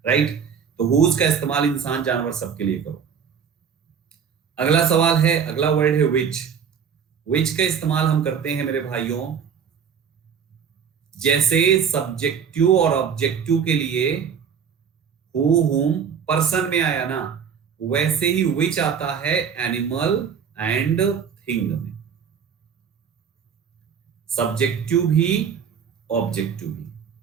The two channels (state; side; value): quieter; left; 7.2 dB